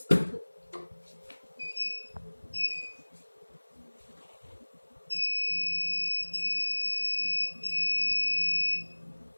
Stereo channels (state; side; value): inverted; both; correlation -1.00